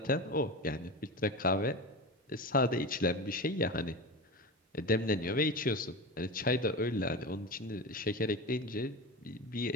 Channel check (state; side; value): normal; both; correlation 0.25